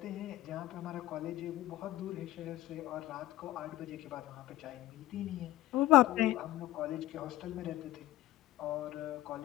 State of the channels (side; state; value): right; quieter; 15.6 dB